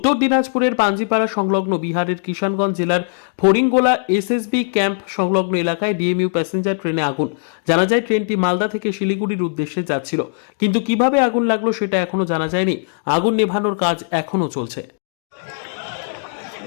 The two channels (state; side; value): silent; right; digital silence